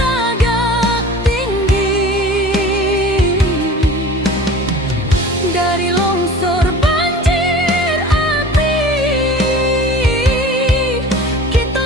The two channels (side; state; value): both; normal; correlation 0.41